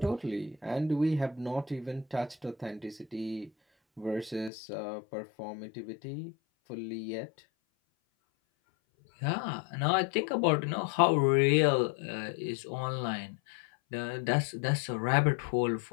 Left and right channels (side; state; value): right; drops out; at 4.5 s